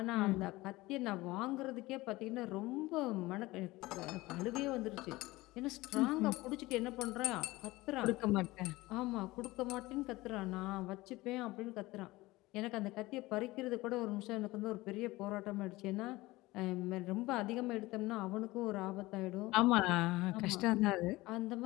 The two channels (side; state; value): right; quieter; 19.8 dB